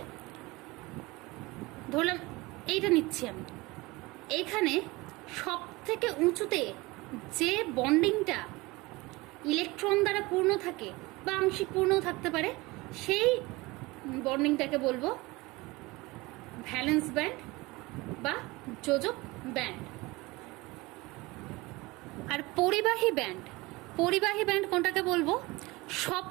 ধরলাম এইটা নিচ্ছি আমি, এইখানে সব থেকে উঁচুতে যে বন্ডিংটা ইলেকট্রন দ্বারা পূর্ণ থাকে বা আংশিক পূর্ণও থাকতে পারে, সেই বন্ডিংটাকে বলবো ভ্যালেন্স ব্যান্ড বা যোজক ব্যান্ড। আর পরিবাহী ব্যান্ড কোনটাকে বলবো? সব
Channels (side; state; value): left; quieter; 22.4 dB